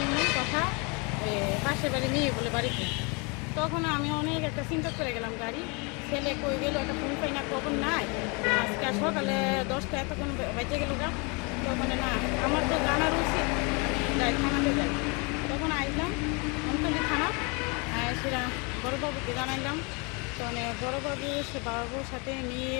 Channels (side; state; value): right; quieter; 31.1 dB